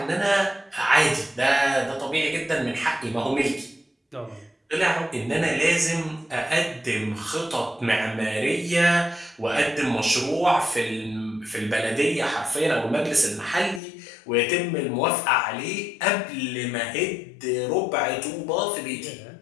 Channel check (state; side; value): drops out; right; at 13.8 s